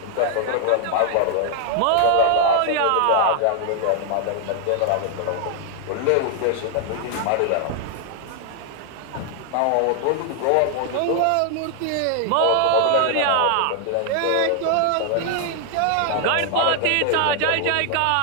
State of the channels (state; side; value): different; both; correlation 0.00